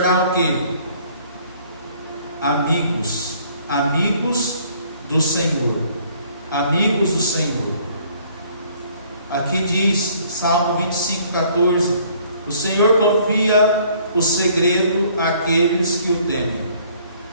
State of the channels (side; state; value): both; inverted; correlation -0.60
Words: o quê? Amigos. Amigos do Senhor. Amigos do Senhor. Aqui diz, Salmo 25:14: o Senhor confia o segredo àqueles que o temem.